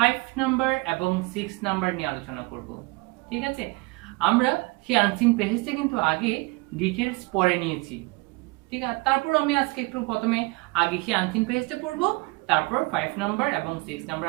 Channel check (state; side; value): quieter; left; 25.1 dB